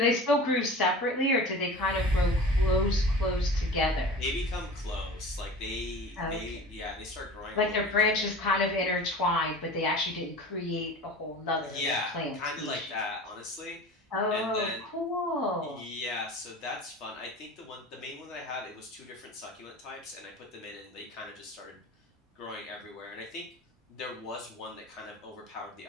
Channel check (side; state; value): both; normal; correlation 0.37